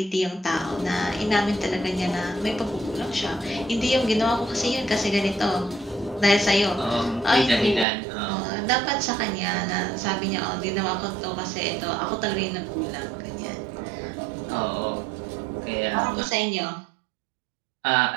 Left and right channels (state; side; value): drops out; left; at 7.9 s